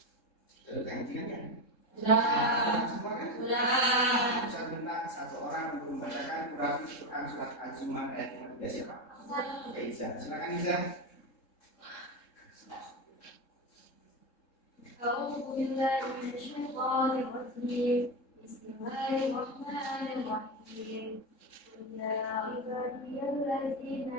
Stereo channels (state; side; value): late; right; 3.7 ms